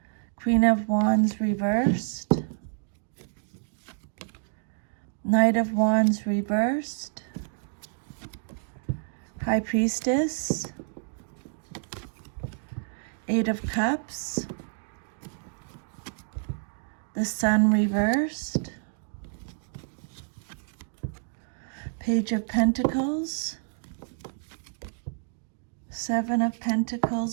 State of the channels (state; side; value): silent; left; digital silence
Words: Queen of Wands reversed, Knight of Wands reversed, High Priestess, Eight of Cups, the Sun reversed, Page of Pentacles, Seven of